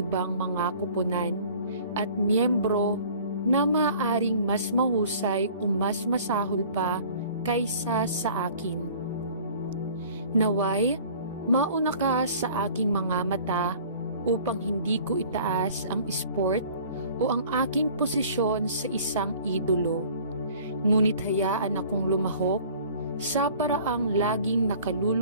mga kuponan at miyembro na maaaring mas mahusay o mas masahol pa kaysa sa akin. Naway, mauna ka sa aking mga mata upang hindi ko itaas ang sport o ang aking posisyon sa isang idolo. Ngunit hayaan akong lumahok sa paraang laging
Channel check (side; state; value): both; inverted; correlation -0.49